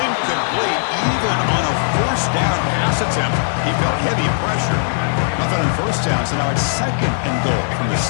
even on a first down pass attempt. He felt heavy pressure. Nothing on first down, so now it's second and goal from the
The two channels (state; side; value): silent; right; 67 dB below the other